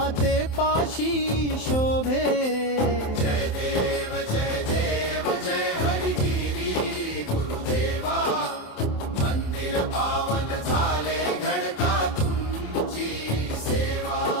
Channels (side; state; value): right; late; 27 ms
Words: पाशी शोभे. जय देव जय हरिगिरी गुरुदेवा, मंदिर पावन झाले घडता तुमची सेवा.